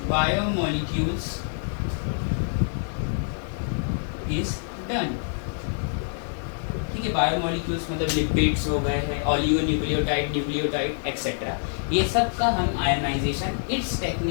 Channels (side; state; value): right; silent; digital silence